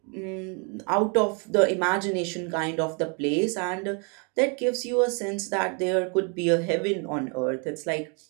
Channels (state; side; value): quieter; left; 35.8 dB